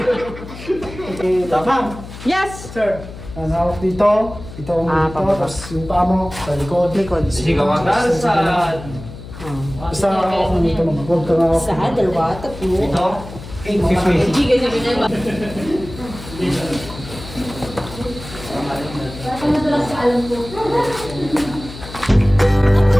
Okay, tapang. Yes! Sir. Hawak dito. Ito ang dito. Tapos yung paa mo sa likod. Sigaw ang dalsad. Basta hawak mo dito. Huwag ka hawak. Sa dalawa, tatlo. Ito.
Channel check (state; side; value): noise; left; hum, 13 dB below the sound